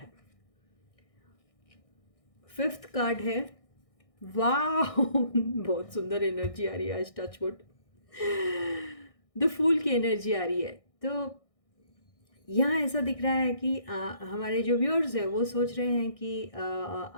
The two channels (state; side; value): late; right; 1.6 ms